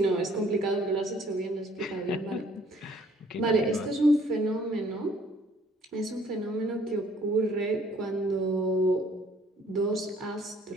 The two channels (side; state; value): both; normal; correlation 0.60